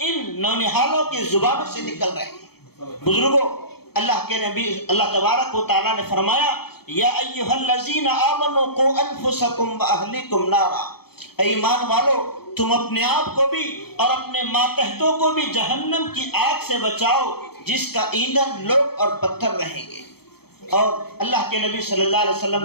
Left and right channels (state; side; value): late; right; 0.96 ms